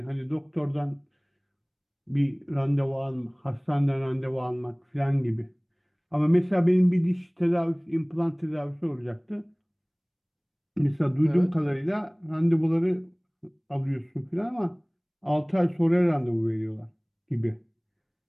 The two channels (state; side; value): identical; both; correlation 1.00